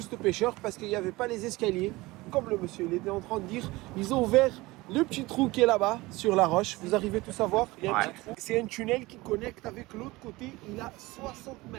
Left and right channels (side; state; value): left; quieter; 21.0 dB